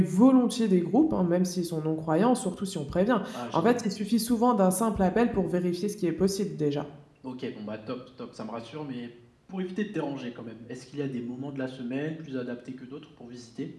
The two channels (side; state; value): both; identical; correlation 1.00